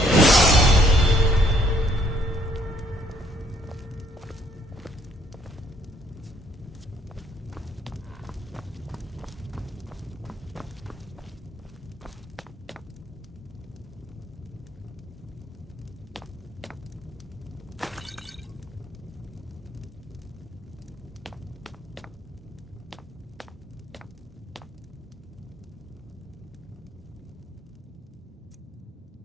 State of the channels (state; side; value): normal; both; correlation 0.65